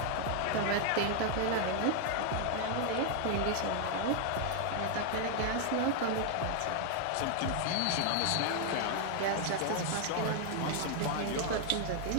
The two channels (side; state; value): both; different; correlation 0.00